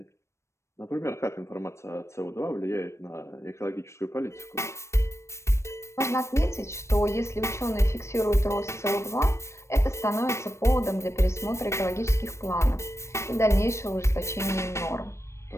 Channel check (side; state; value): right; late; 0.13 ms